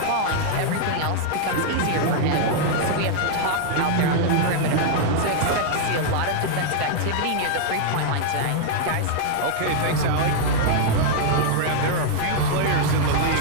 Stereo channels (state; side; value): different; both; correlation -0.01